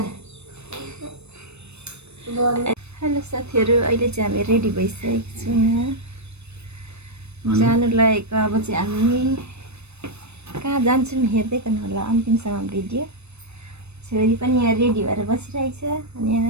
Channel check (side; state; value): left; late; 0.81 ms